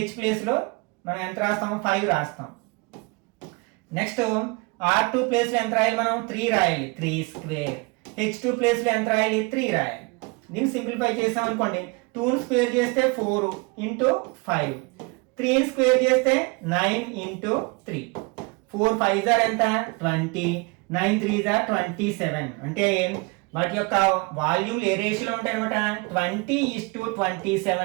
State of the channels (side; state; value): left; quieter; 28.0 dB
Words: ప్లేస్ లో మనం ఎంత రాస్తాం 5 రాస్తాం. నెక్స్ట్ R2 ప్లేస్ లో ఎంత రాయాలి మనం 3 రాయాలి 3². h2 ప్లేస్ లో ఎంత రాయాలి 3 రాయాలి. దీన్ని సింప్లిఫై చేసాం అనుకోండి 2 స్క్వేర్ చేస్తే 4 ఇంటూ 5, 3 స్క్వేర్ చేస్తే 9 ఇంటూ 3, 4 5s are ఎంత 20, 9 3s are 27. అంటే వాటి యొక్క వాల్యూమ్ ఏ రేషియోలో ఉంటాయి అనమాట